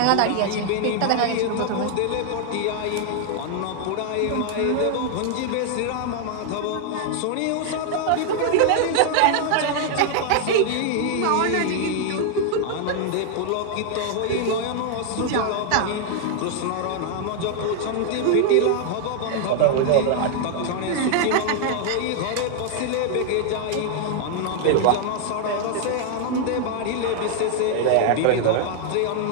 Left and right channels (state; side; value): different; both; correlation 0.00